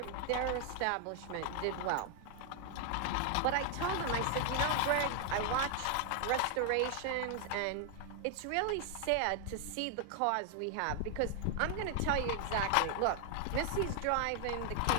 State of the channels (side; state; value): both; different; correlation 0.00